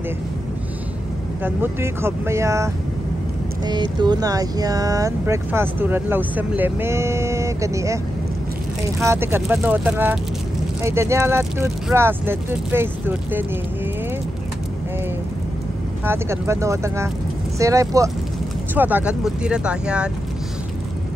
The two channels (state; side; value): normal; both; correlation 0.88